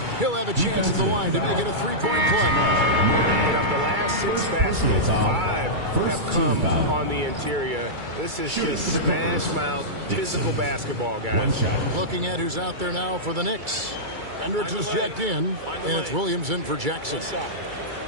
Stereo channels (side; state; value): left; late; 2.3 ms